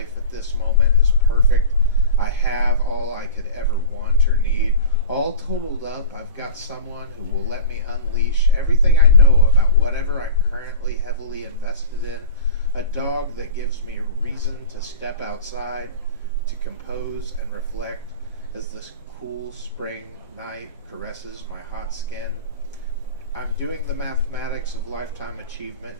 at this moment is perfect. I have all I could ever want or need. All totaled up, I've got someone who will let me unleash everything I know about whatever I'm currently heavily invested in. A dog that gives me reason to step outside, to compose and reflect as this cool spring night caresses my hot skin. I'm doing the mathematics of lifetime achievement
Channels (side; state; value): both; inverted; correlation -0.32